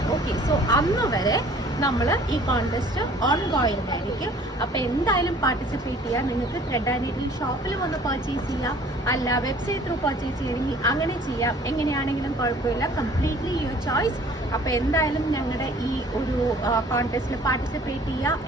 ഓക്കെ, സോ അന്ന് വരെ നമ്മൾ ഈ കോൺടെസ്റ്റ് ഓൺഗോയിങ് ആയിരിക്കും. അപ്പോൾ എന്തായാലും പാർട്ടിസിപ്പേറ്റ് ചെയ്യാം. നിങ്ങൾക്ക് ത്രെഡ് ആൻഡ് നീഡിൽ ഷോപ്പിൽ വന്ന് പർച്ചേസ് ചെയ്യാം, അല്ല വെബ്സൈറ്റ് ത്രൂ പർച്ചേസ് ചെയ്യണമെങ്കിൽ അങ്ങനെ ചെയ്യാം. എങ്ങനെയാണെങ്കിലും കുഴപ്പമില്ല, കംപ്ലീറ്റ്ലി യുവർ ചോയ്സ്. അപ്പോൾ എന്തായാലും ഞങ്ങളുടെ ഈ ഒരു കോൺടെസ്റ്റിൽ പാർട്ടിസിപ്പേറ്റ് ചെയ്യുക.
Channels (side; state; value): both; normal; correlation 0.52